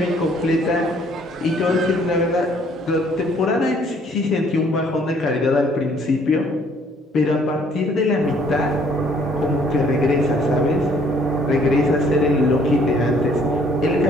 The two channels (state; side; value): normal; both; correlation 0.62